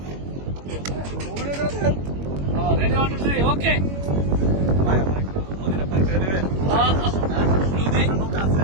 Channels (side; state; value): left; late; 21 ms